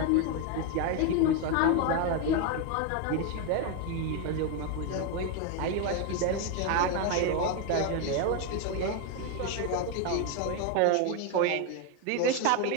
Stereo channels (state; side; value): different; both; correlation 0.02